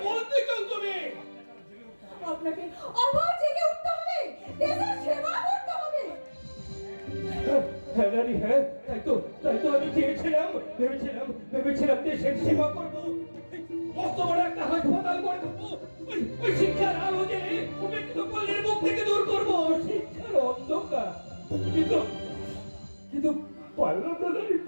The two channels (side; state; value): both; inverted; correlation -1.00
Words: বলতে চাও তুমি? আপনাকে আবার জেগে উঠতে হবে, দেশের সেবা করতে হবে। হ্যাঁ রানী, হ্যাঁ, তাই তো আমি ভেবেছিলাম দেশের সেবা করবো, মস্ত বড় একটা হাসপাতাল করে দেবো, ওই শিক্ষার আলো জেলে উপেক্ষিত পল্লীর মুখ থেকে দূর করবো শিক্ষার অন্ধকার। কিন্তু পারলাম না রানী,